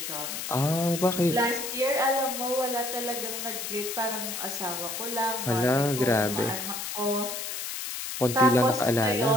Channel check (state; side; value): noise; left; hiss, 5 dB below the sound